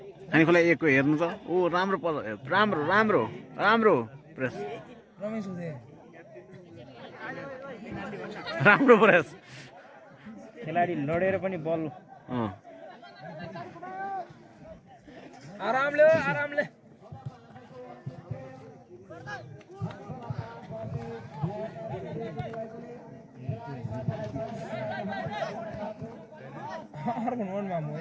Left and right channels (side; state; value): both; identical; correlation 1.00